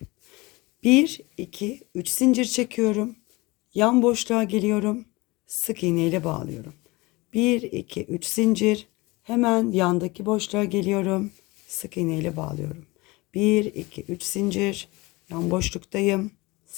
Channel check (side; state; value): right; quieter; 23.1 dB